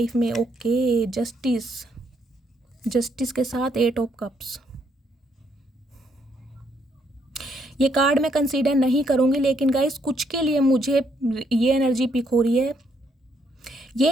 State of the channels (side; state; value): both; normal; correlation 0.73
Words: में। ओके, जस्टिस, जस्टिस के साथ 8 ऑफ कप्स। ये कार्ड मैं कंसीडर नहीं करूँगी, लेकिन गाइस कुछ के लिए मुझे ये एनर्जी पिक हो रही है,